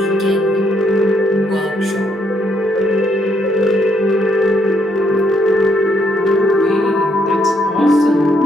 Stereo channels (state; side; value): normal; both; correlation 0.72